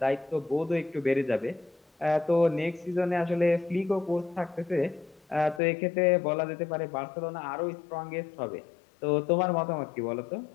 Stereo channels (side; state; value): right; drops out; at 5.6 s